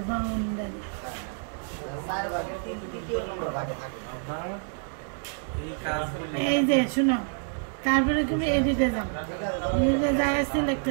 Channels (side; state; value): left; silent; 59 dB below the other